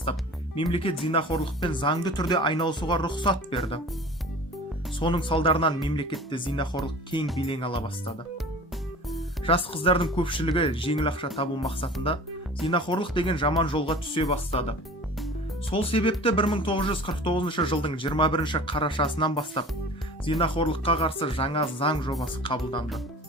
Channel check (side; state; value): both; normal; correlation 0.42